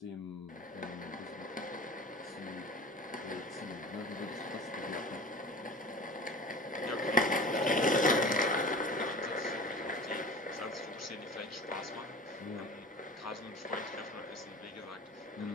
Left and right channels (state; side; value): normal; both; correlation 0.38